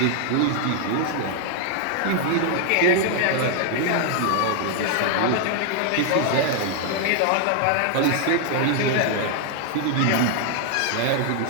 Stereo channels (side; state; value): both; different; correlation 0.00